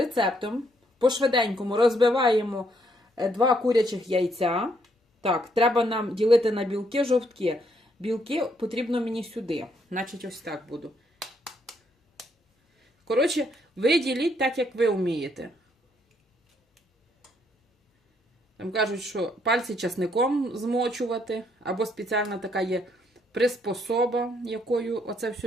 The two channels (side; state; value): both; normal; correlation 0.71